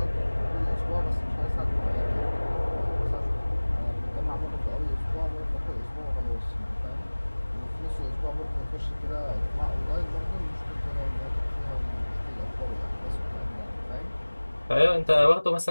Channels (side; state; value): both; inverted; correlation -1.00